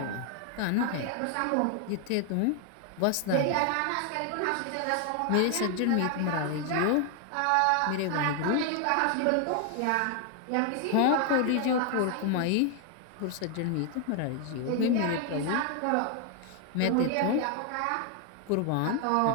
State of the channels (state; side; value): different; both; correlation 0.00